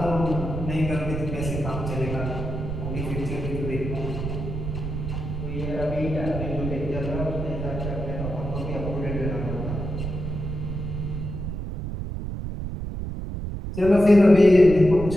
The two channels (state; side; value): noise; right; rumble, 5 dB below the sound